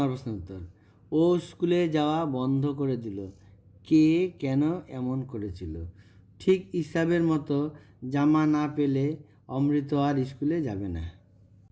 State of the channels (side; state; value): both; identical; correlation 1.00